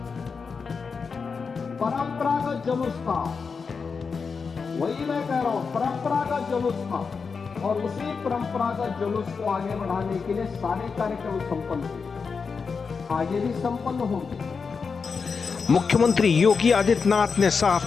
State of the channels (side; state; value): right; quieter; 5.3 dB